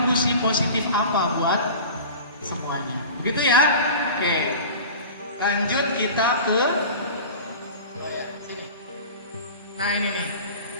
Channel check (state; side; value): inverted; both; correlation -0.36